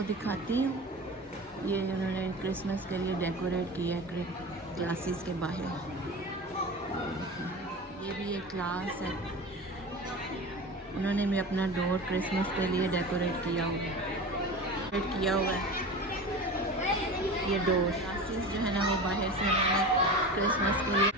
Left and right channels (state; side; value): normal; both; correlation 0.31